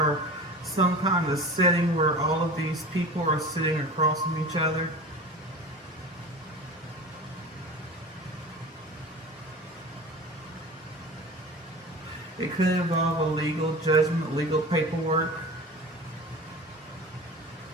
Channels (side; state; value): both; normal; correlation 0.35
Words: some kind of setting where all of these people are sitting across from each other. It could involve a legal judgment, legal paperwork.